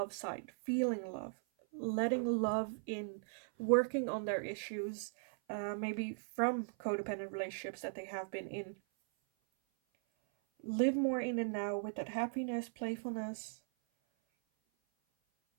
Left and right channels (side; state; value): left; silent; 52 dB below the other